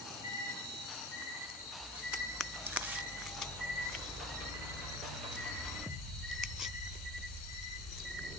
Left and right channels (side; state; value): both; normal; correlation 0.36